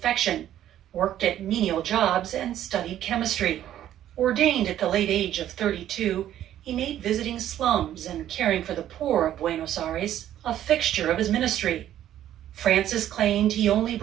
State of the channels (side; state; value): left; quieter; 11.8 dB